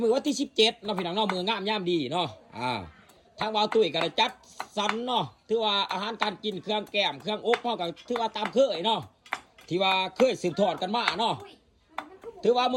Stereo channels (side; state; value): both; identical; correlation 1.00